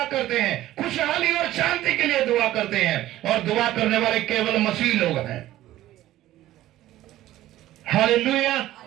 करते हैं, खुशहाली और शांति के लिए दुआ करते हैं, और दुआ करने वाले केवल मसीह लोग हैं। Hallelujah,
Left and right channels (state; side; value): quieter; left; 14.6 dB